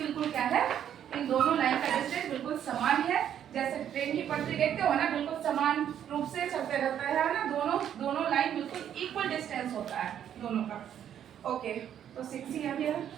क्या है, इन दोनों लाइन का डिस्टेंस बिल्कुल समान है, जैसे ट्रेन की पटरी देखते हो ना, बिल्कुल समान रूप से चलते रहता है ना, दोनों लाइन बिल्कुल इक्वल डिस्टेंस होता है दोनों का। ओके, तो 6 ही आ गया।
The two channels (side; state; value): left; quieter; 9.8 dB